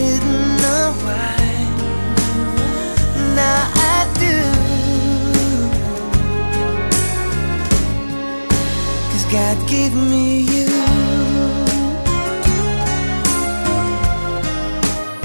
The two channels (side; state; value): both; inverted; correlation -1.00